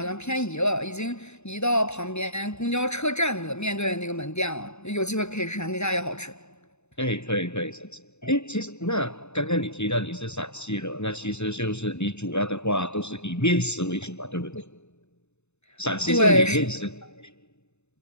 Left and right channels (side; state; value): right; late; 0.81 ms